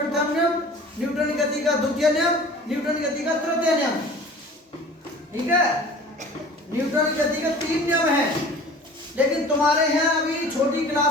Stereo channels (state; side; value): normal; both; correlation 0.44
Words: नियम, न्यूटन की गति का द्वितीय नियम, न्यूटन की गति का तृतीय नियम। ठीक है, न्यूटन की गति का 3 नियम है। लेकिन तुम्हारे यहाँ अभी छोटी